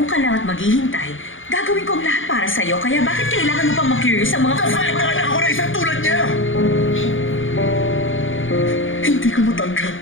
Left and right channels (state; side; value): late; right; 0.57 ms